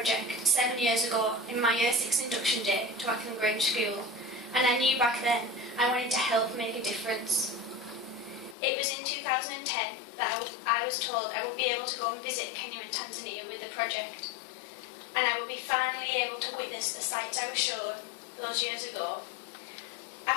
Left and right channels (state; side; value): drops out; right; at 8.6 s